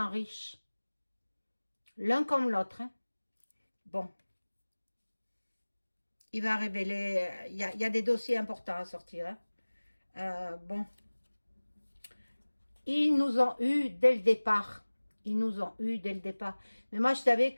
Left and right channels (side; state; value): both; inverted; correlation -1.00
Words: riches. L'un comme l'autre. Hein. Bon. Il va révéler... Il y a des dossiers importants à sortir. Hein. Bon. Ils nous ont eu dès le départ. Ils nous ont eu dès le départ. Mais moi, je savais